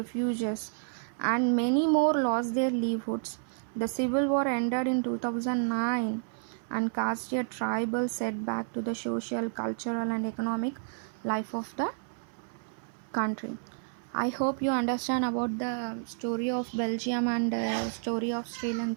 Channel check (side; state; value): left; silent; 58 dB below the other